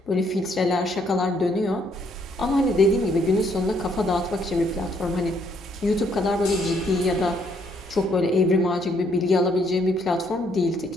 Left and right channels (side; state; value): both; normal; correlation 0.69